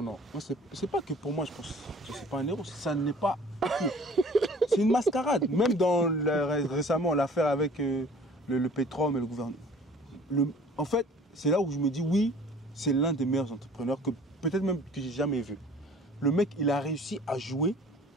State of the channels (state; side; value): normal; both; correlation 0.50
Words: C'est pas que pour moi, je pense que c'est pas un héros. Ça n'est pas. C'est une mascarade. Même dans récemment l'affaire avec le pétrole et le gouvernement. En fait, c'est là où je me dis oui, c'est l'un des meilleurs entrepreneurs que peut-être même que j'ai jamais vu. Le mec, il a réussi à jouer